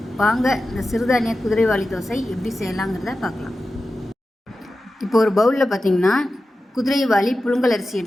வாங்க இந்த சிறுதானிய குதிரைவாலி தோசை எப்படி செய்யலாங்கிறத பார்க்கலாம். இப்போ ஒரு பவுலில் பார்த்தீங்கன்னா குதிரைவாலி புழுங்கல் அரிசி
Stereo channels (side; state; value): both; normal; correlation 0.93